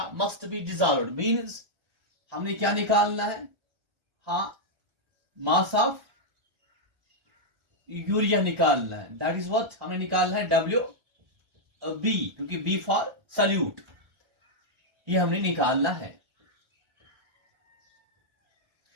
must be dissolved means हमने क्या निकालना है? हाँ, मास ऑफ यूरिया निकालना है। दैट इज व्हाट हमें निकालना है, डब्ल्यू बी, क्योंकि बी फॉर सल्यूट, ये हमने निकालना है।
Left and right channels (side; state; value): left; late; 1.3 ms